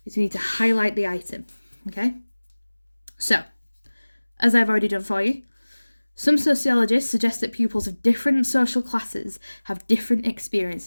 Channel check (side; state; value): both; inverted; correlation -1.00